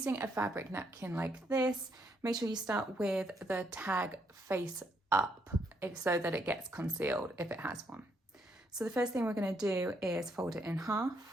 a fabric napkin like this, make sure you start with the tag face up so that it gets concealed if it has one. So the first thing we're going to do is fold it in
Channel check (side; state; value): both; normal; correlation 0.74